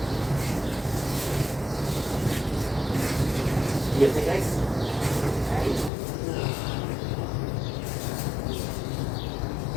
You think, guys?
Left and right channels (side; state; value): right; drops out; at 5.9 s